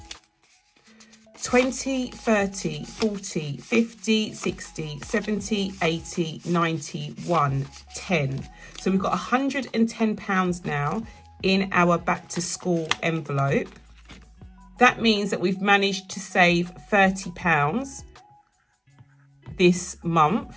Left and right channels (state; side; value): identical; both; correlation 1.00